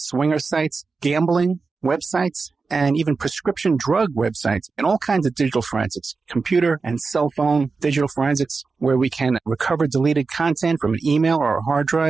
swinger sites, gambling websites, and even prescription drug websites, and all kinds of digital forensics, computer and cell phone digital forensics, where we can recover deleted content from an email or a hard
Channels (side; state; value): left; quieter; 4.4 dB